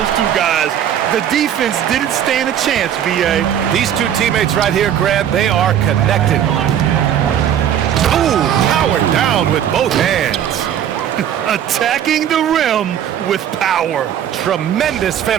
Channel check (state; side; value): quieter; left; 9.9 dB